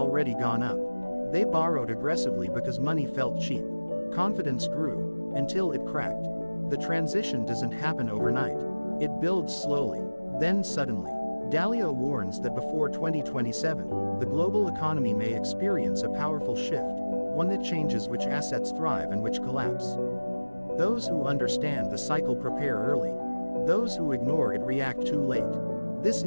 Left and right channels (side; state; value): both; inverted; correlation -1.00